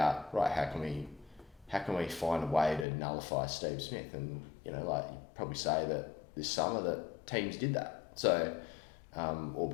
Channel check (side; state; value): right; drops out; at 2.9 s